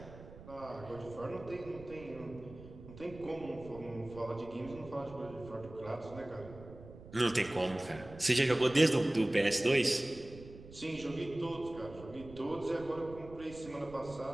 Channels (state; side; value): noise; right; rumble, 16 dB below the sound